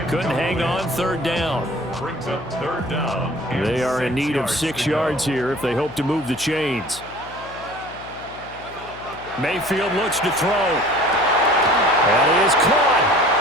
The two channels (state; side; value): noise; left; hum, 19 dB below the sound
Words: Couldn't hang on third down. Brings up third down. They are in need of 6 yards here if they hope to move the chains. Mayfield looks to throw. And he is caught.